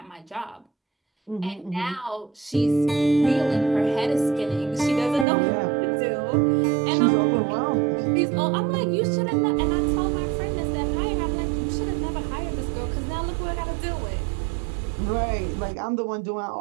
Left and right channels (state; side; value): drops out; left; at 5.2 s